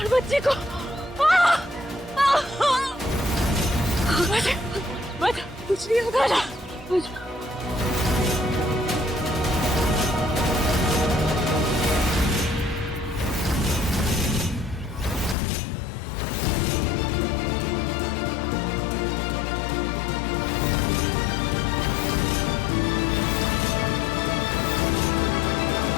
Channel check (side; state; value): right; drops out; at 15.4 s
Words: बच्चे को। बच कुछ नहीं होगा ना।